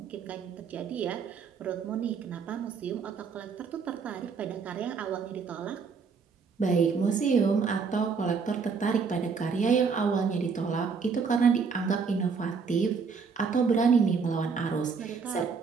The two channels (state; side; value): quieter; left; 5.4 dB